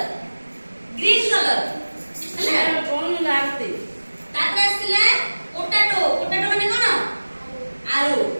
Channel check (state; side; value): inverted; both; correlation -1.00